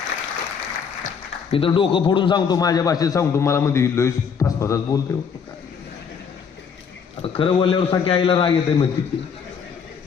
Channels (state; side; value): quieter; right; 6.5 dB